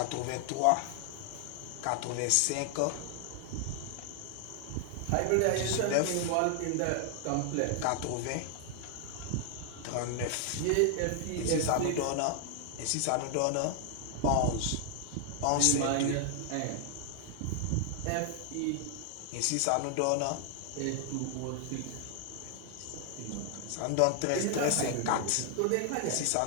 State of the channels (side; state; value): both; different; correlation 0.00